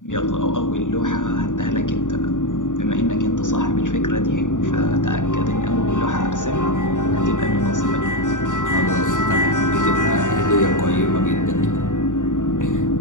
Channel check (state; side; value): late; right; 0.86 ms